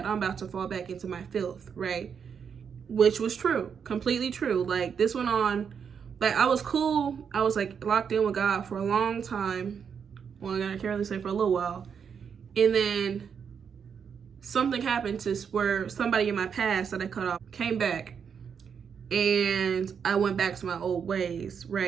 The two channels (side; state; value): left; quieter; 7.0 dB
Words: I'm about to fall back into my filth, right? Which was true, completely true. Like, this went on Like, I was cool. I was like locked in with God for a long time. Well, I can't really say for a little while. And then something happened to where somebody in my past that I cut off came back, and I went back to my old ways,